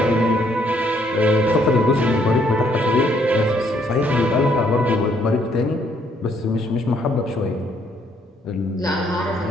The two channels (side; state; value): both; normal; correlation 0.68